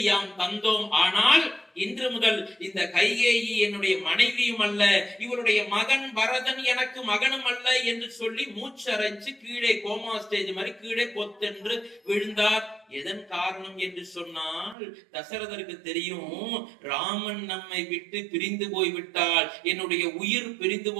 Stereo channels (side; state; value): left; drops out; at 14.8 s